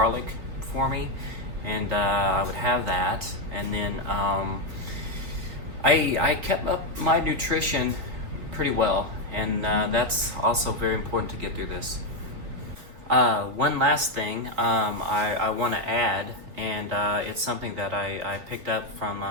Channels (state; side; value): late; left; 3.4 ms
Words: for me, and I would have that. And then I kept up my nutrition pretty well, and that's also very important to get through this. One last thing I want to add, and it's something that I picked up from